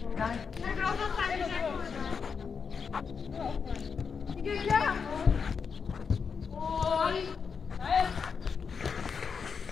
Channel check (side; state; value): right; quieter; 5.9 dB